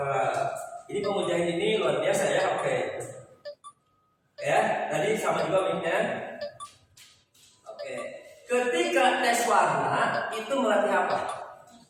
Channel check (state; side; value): identical; both; correlation 1.00